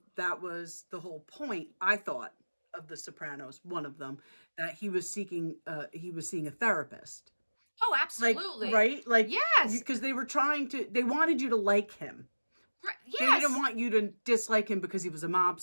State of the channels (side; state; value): both; inverted; correlation -1.00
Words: the whole point, I thought, of The Sopranos, one of them, that he was seeing a therapist. Oh, Like, absolutely. right? Like, Yes. because they wanted you to like him. Right. They Yes. didn't want you to dislike him because he was a